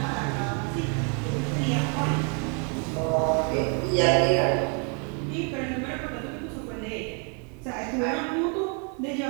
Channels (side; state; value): left; quieter; 37.3 dB